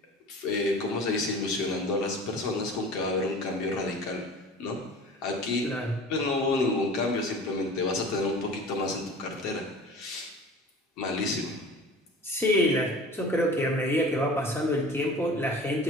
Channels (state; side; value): normal; both; correlation 0.41